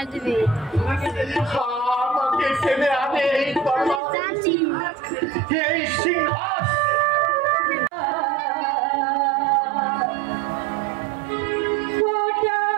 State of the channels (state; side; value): drops out; left; at 4.0 s